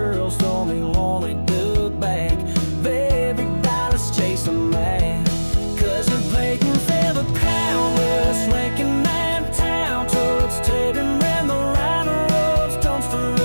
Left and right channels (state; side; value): inverted; both; correlation -1.00